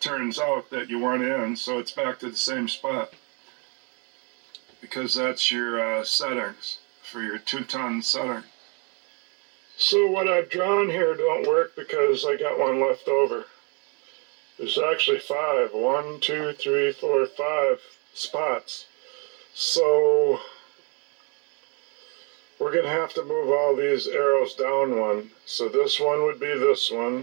out that you want in, so it's back to the same spot. Because that's your settings for your 2-ton setting. So what I've drawn here don't work because I got one left over. There's actually 5. 1, 2, 3, 4, 5 spots. So we're going to have to move all these arrows down one. So this one would be this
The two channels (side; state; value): left; quieter; 34.4 dB